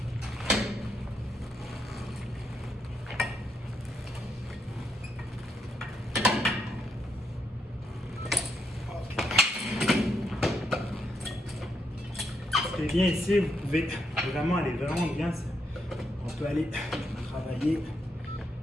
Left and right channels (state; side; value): normal; both; correlation 0.78